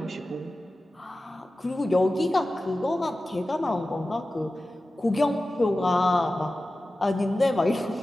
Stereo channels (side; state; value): both; normal; correlation 0.95